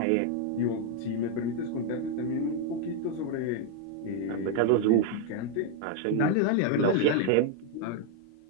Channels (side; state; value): both; different; correlation 0.01